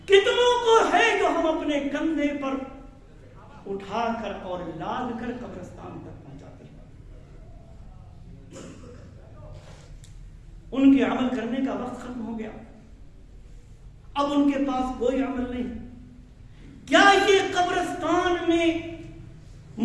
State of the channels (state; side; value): identical; both; correlation 1.00